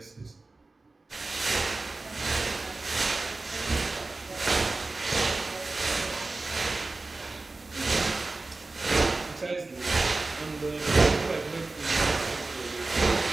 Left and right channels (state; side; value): quieter; left; 3.4 dB